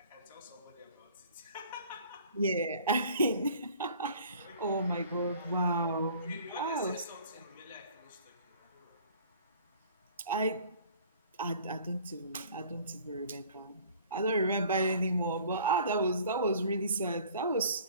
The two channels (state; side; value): inverted; both; correlation -0.50